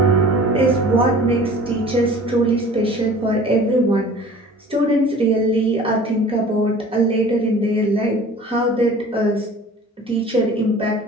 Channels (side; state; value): both; normal; correlation 0.45